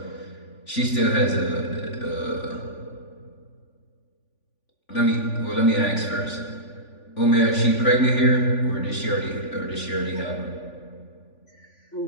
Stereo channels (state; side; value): late; right; 3.5 ms